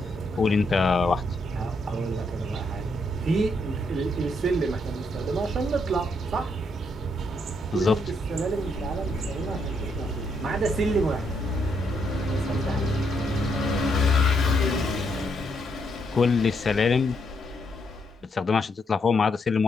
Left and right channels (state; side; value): normal; both; correlation 0.76